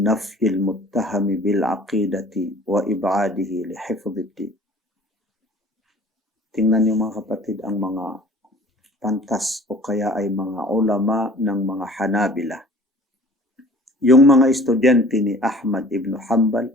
nafyil muttahami bil aqidati wa ib'adihi li hifdhiddin. Tingnan niyo mga kapatid ang mga pantas o kaya ay mga ulama ng mga Hanabila. Yung mga estudyante ni Ahmad ibn Hanbal,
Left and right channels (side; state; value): both; normal; correlation 0.48